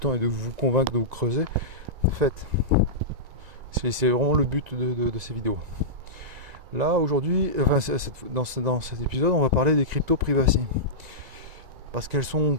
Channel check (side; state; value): left; late; 1.9 ms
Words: et de vous convaincre, de vous creuser, faites. C'est vraiment le but de ces vidéos. Là, aujourd'hui, dans cet épisode, on va parler des crypto privacy. Parce qu'elles sont